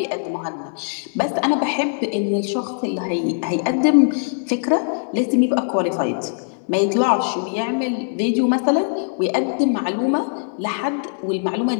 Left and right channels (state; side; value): silent; right; 65 dB below the other